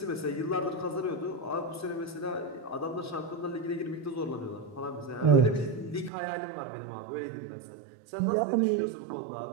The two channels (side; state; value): left; drops out; at 6.1 s